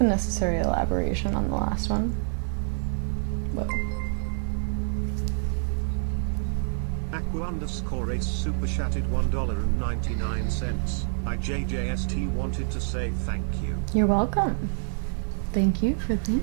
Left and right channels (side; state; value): left; silent; 60 dB below the other